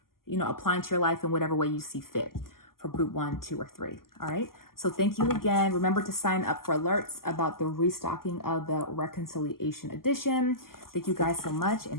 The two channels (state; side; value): late; right; 0.92 ms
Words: applying to your life in whatever way you see fit for group 1, 2, or 3. All right. So thank you again. Remember to sign up for alerts about the restocking of the Reconciliation Edition. Thank you guys so much, and